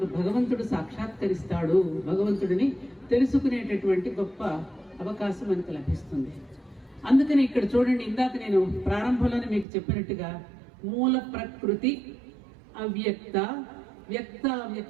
భగవంతుడు సాక్షాత్కరిస్తాడు. భగవంతుడిని తెలుసుకునేటటువంటి గొప్ప అవకాశం మనకు లభిస్తుంది. అందుకని ఇక్కడ చూడండి, ఇందాక నేను ప్రారంభంలోనే మీకు చెప్పినట్టుగా మూల ప్రకృతి అవ్యక్త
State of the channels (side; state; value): left; drops out; at 9.7 s